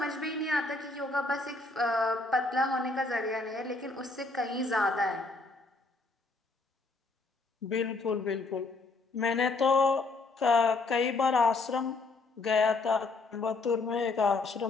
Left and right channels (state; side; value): quieter; right; 3.6 dB